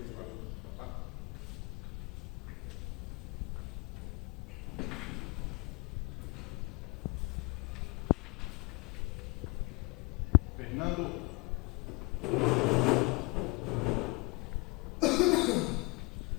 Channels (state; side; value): quieter; right; 28.8 dB